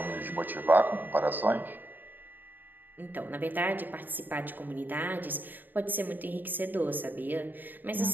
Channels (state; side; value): late; left; 0.090 ms